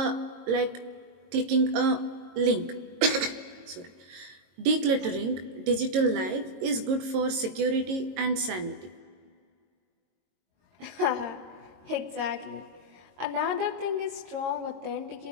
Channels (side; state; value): left; late; 22 ms